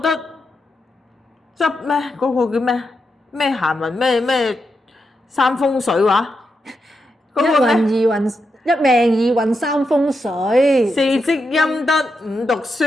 執咩嗰個叫咩閒雲咩三風水話，一運二運，一命二運三風水，四積陰德五讀書。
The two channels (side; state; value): both; normal; correlation 0.85